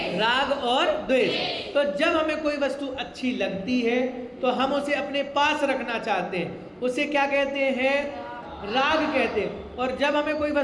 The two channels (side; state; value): both; identical; correlation 1.00